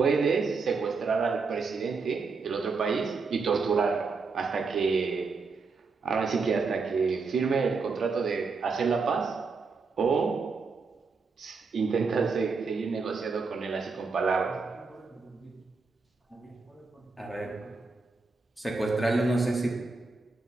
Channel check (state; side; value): quieter; left; 4.5 dB